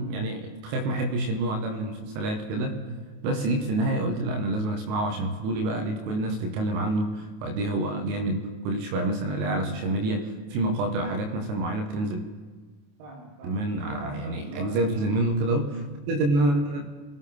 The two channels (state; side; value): late; left; 28 ms